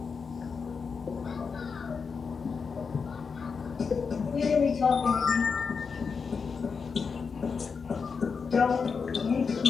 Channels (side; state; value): right; quieter; 5.5 dB